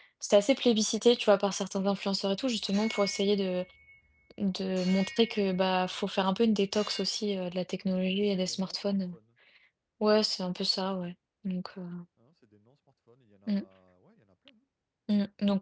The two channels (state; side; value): identical; both; correlation 1.00